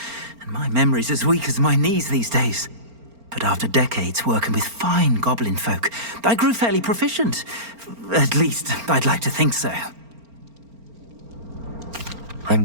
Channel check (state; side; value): late; left; 4.4 ms